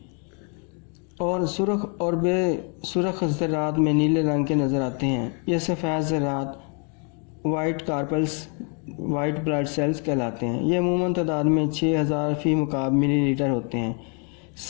اور سرخ اور بے سرخ ذرات میں نیلے رنگ کے نظر آتے ہیں۔ یہ سفید ذرات white corpuscles white blood cells کہلاتے ہیں۔ یہ عموماً تعداد میں 6000 فی مکعب ملی لیٹر ہوتے ہیں۔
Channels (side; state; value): right; quieter; 37.8 dB